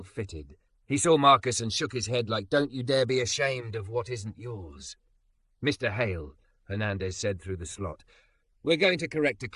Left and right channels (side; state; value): both; identical; correlation 1.00